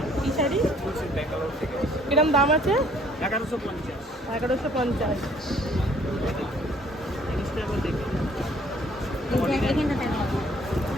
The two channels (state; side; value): normal; both; correlation 0.60